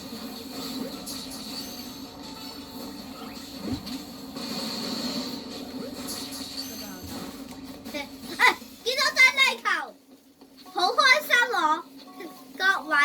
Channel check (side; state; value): both; identical; correlation 1.00